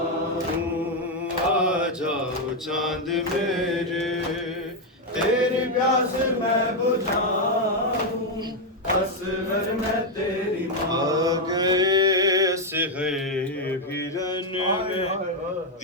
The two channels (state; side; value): normal; both; correlation 0.02